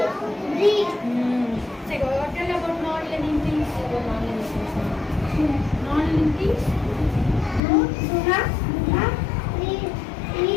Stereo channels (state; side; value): drops out; right; at 7.6 s